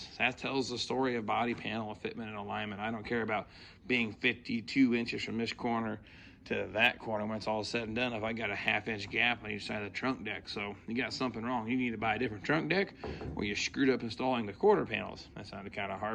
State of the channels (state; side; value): identical; both; correlation 1.00